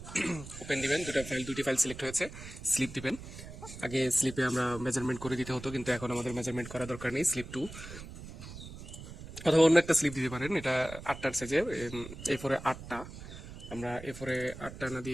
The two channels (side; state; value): right; noise; rumble, 13 dB below the sound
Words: ওপেন দিবেন। দুটি ফাইল সিলেক্ট হয়েছে, স্লিপ দিবেন। আগে স্লিপে আমরা মেজারমেন্ট করে দিতে হতো, কিন্তু এখন আমাদের মেজারমেন্ট করা দরকার নেই। স্লিপ 2 অথবা অন্য একটা স্লিপ দিতে পারেন। এটা 8টার সাইজে, A4 8টা। আমরা A4 8টা না